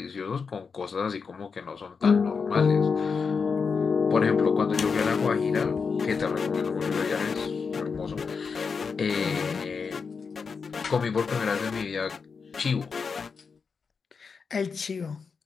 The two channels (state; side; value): quieter; right; 5.4 dB